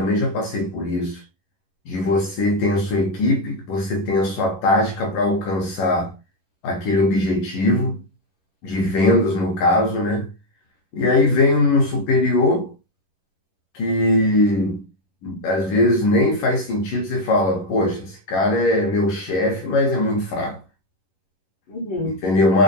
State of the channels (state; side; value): late; right; 11 ms